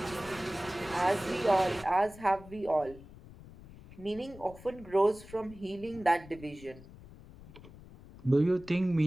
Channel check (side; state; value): left; noise; rumble, 19 dB below the sound